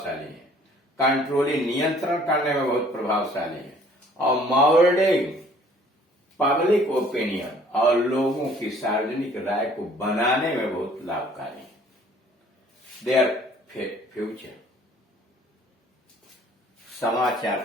है, कंट्रोलिंग, नियंत्रण करने में बहुत प्रभावशाली है, और मोल्डिंग पब्लिक ओपिनियन, और लोगों की सार्वजनिक राय को बनाने में बहुत लाभकारी है। देयर फ्यूचर,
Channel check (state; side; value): normal; both; correlation 0.56